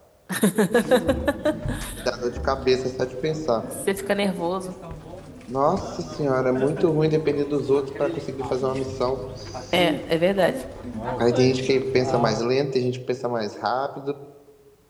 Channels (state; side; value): identical; both; correlation 1.00